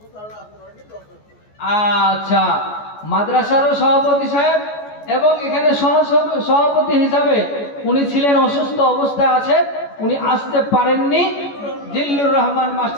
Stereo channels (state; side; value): late; right; 14 ms